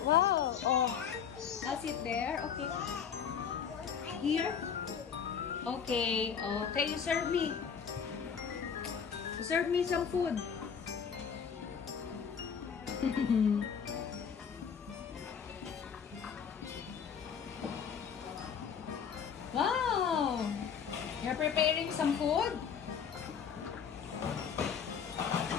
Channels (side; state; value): right; quieter; 7.2 dB